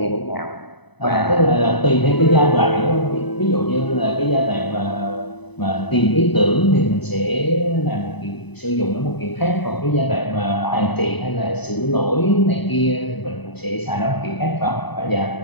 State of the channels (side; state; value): right; late; 0.99 ms